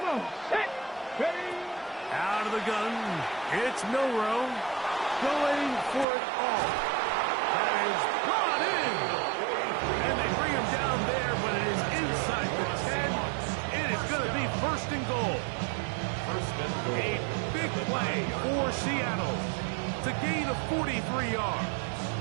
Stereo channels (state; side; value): drops out; left; at 6.1 s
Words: on. Set. Ready. Out of the gun, it's Milroe going for it all. That is brought in. And they bring him down there, but it is inside the 10. It is going to be 1st and goal. A big play for Seattle to gain a 43 yards.